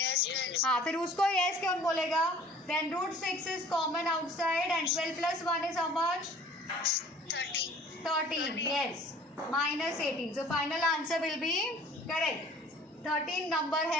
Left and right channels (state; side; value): normal; both; correlation 0.50